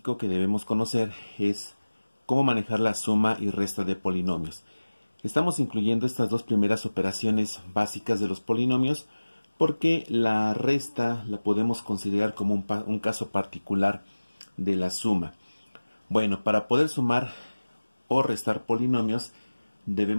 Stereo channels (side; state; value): both; inverted; correlation -1.00